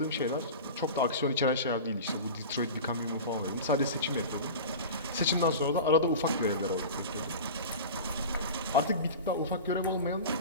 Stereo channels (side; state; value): both; inverted; correlation -0.31